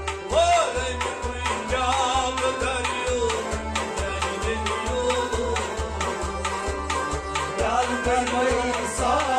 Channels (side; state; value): both; identical; correlation 1.00